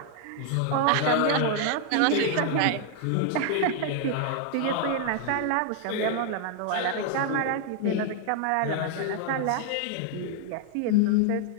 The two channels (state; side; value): different; both; correlation 0.00